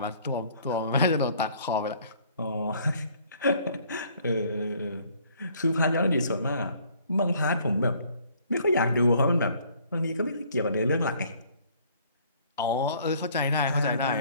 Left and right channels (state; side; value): inverted; both; correlation -0.59